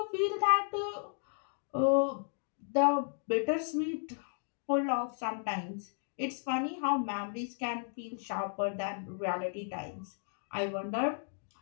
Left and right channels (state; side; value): silent; right; digital silence